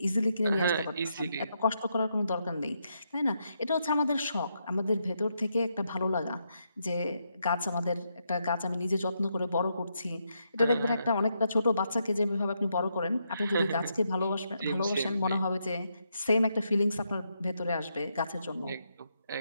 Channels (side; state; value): both; inverted; correlation -0.80